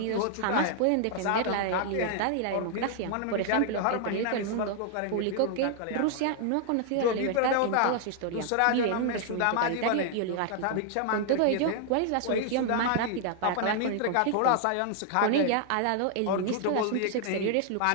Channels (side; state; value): both; different; correlation 0.00